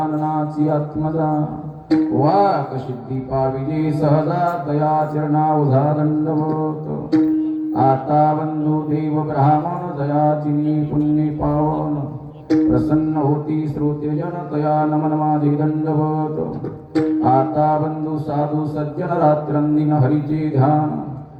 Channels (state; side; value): identical; both; correlation 1.00